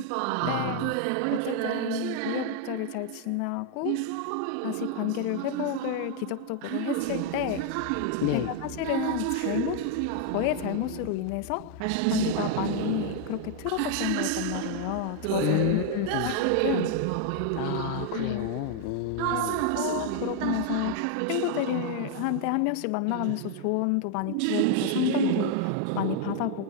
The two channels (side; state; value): both; different; correlation 0.00